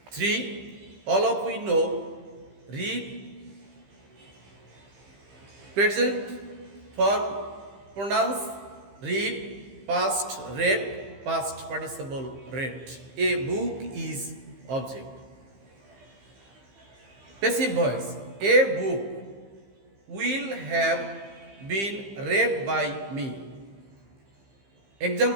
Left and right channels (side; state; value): left; late; 15 ms